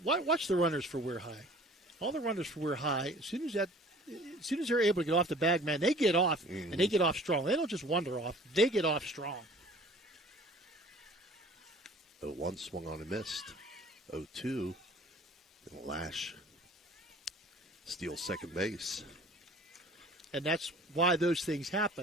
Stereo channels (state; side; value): normal; both; correlation 0.49